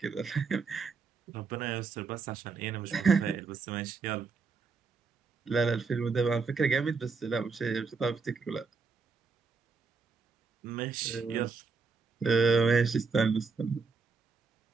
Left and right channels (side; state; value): left; quieter; 4.8 dB